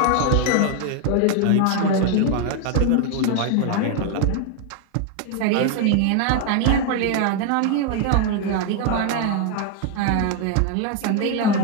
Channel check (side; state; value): both; different; correlation 0.01